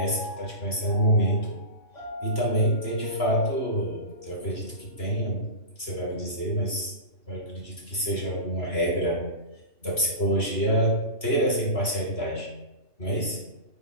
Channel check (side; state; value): right; late; 3.0 ms